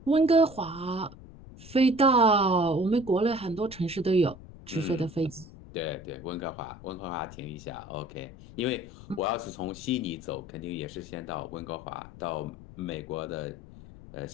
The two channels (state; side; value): noise; left; rumble, 17 dB below the sound